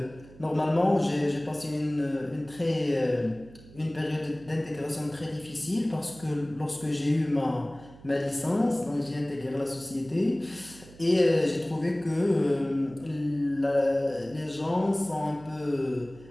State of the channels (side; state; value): right; noise; hum, 21 dB below the sound